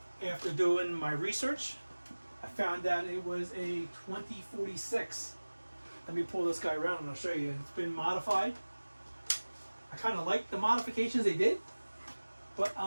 After doing my research, I found out it was a 2046. Let me pull this guy around and I'll show you. It's been modified. I kind of like the modifications they did, but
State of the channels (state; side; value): inverted; both; correlation -1.00